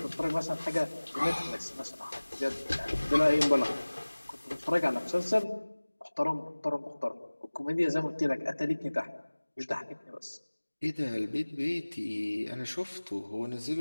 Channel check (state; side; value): inverted; both; correlation -1.00